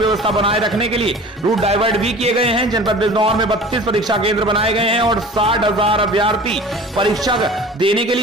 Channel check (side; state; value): both; normal; correlation 0.41